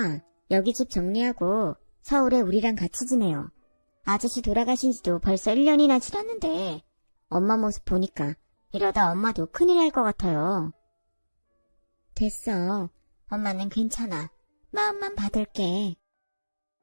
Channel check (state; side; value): inverted; both; correlation -1.00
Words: 여기 집 정리하고 서울에 우리랑 같이 지내요. 아저씨 돌아가신 지도 벌써 1년이나 지났는데 엄마 모습 보니까 이러다 엄마도 큰일 날 것 같아요. 됐어. 엄마는 괜찮아. 마음만 받을게.